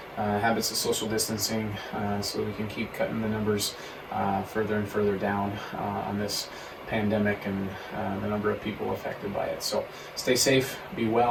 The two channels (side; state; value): both; identical; correlation 1.00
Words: habits of social distancing so we can keep cutting the numbers further and further down on this pandemic and the number of people affected by it. So stay safe, be